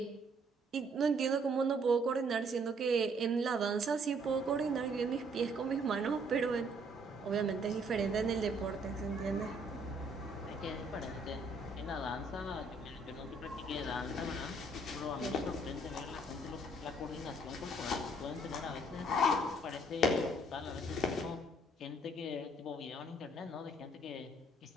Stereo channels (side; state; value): both; normal; correlation 0.64